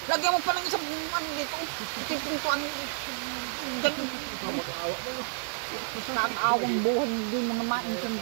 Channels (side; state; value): left; silent; digital silence